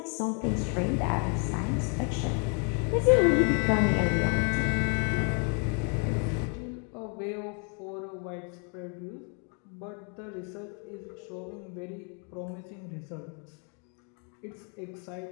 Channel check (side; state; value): right; quieter; 39.3 dB